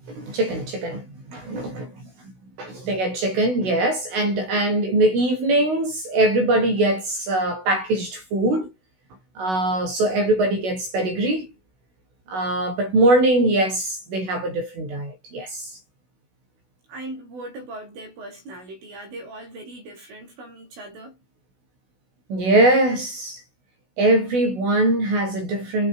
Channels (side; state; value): left; late; 16 ms